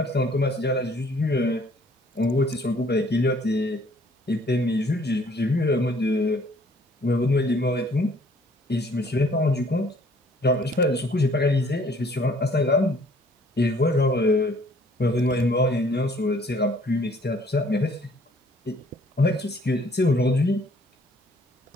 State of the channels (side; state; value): both; normal; correlation 0.59